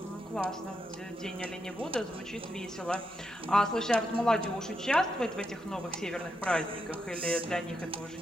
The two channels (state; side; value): normal; both; correlation 0.83